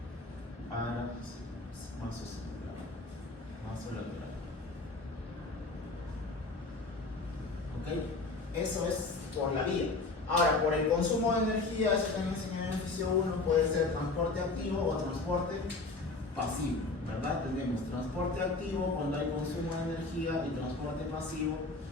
vasolateral. ¿Ok? Eso es por la vía. Ahora, por el consumo de energía, eso también enseñé en el ejercicio 1, puede ser transporte activo o transporte pasivo, ¿verdad? Tenemos transporte activo cuando hay consumo de energía y transporte pasivo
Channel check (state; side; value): quieter; right; 3.5 dB